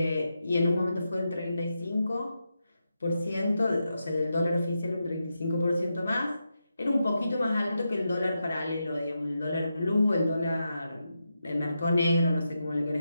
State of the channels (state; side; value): inverted; both; correlation -0.87